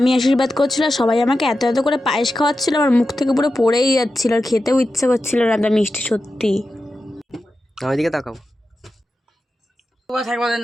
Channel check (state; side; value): normal; both; correlation 0.91